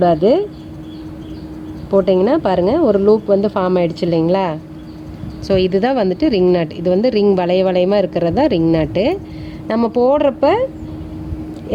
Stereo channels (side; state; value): both; identical; correlation 1.00